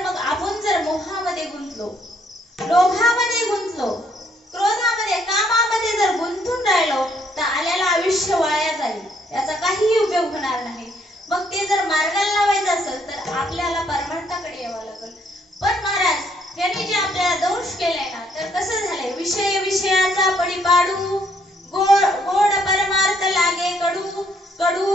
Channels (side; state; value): both; normal; correlation 0.69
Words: मग आपण जर मोहामध्ये गुंतलो, लोभामध्ये गुंतलो, क्रोधामध्ये, कामामध्ये जर गुंतून राहिलो, तर आलेलं आयुष्य वाया जाईल, याचा काहीही उपयोग होणार नाही. मग ते जर मार्गाला लावायचं असेल तर आपल्याला परमार्थाकडे यावं लागेल. पण महाराज यांनी जे आपल्याला दोष केलाय ना, तर कसं झालंय, विषय विषयाचा पडी पाडू, गोड परमार्थ लागे कडू,